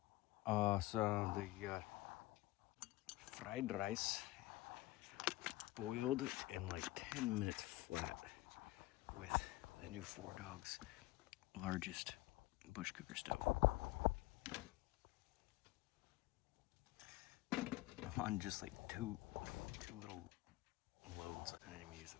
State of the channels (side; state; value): right; quieter; 18.3 dB